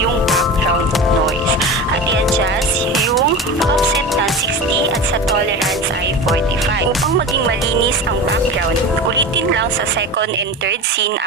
background noise. At i-adjust yung offset ng 60 at sa tolerance ay 45. Upang maging malinis ang background, ulitin lang sa second and third scene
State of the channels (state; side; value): normal; both; correlation 0.29